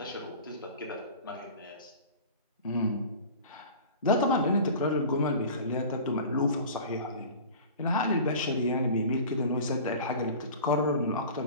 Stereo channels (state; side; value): inverted; both; correlation -0.39